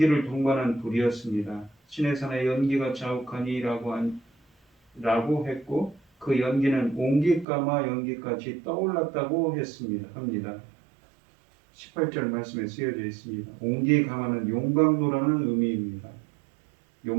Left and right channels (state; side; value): drops out; left; at 7.5 s